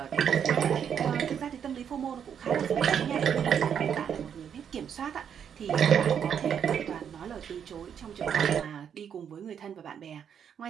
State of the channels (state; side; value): quieter; left; 8.1 dB